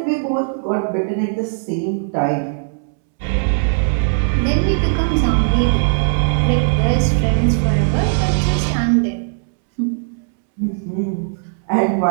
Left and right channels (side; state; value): left; silent; 67 dB below the other